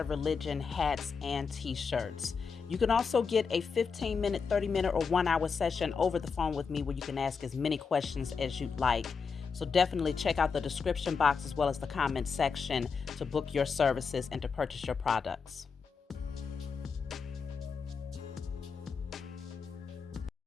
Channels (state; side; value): quieter; right; 5.5 dB